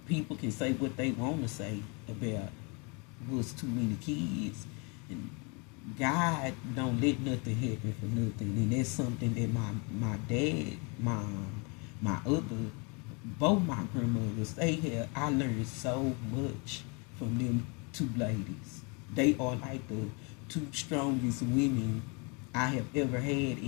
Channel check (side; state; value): right; quieter; 32.2 dB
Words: people can say what they want to say about what's too many kids, and God don't let nothing happen for nothing, and that's something that my dad, mom, my other, both my grandmothers, they had. I learned so much from them two ladies. They are like the two strongest women I have ever had